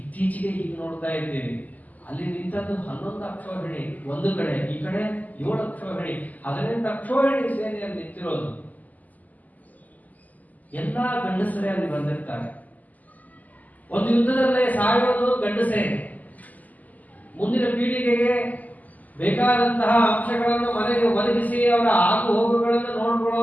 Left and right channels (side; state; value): right; late; 0.079 ms